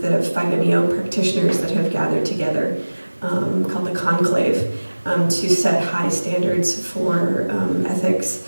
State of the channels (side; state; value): both; inverted; correlation -1.00